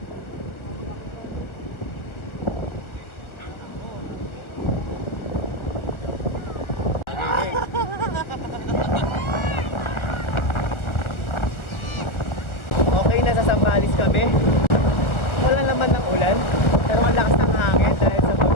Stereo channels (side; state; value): right; late; 1.4 ms